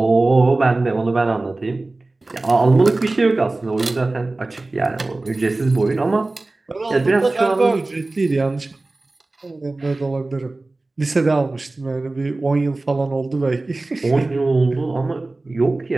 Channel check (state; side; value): quieter; left; 3.1 dB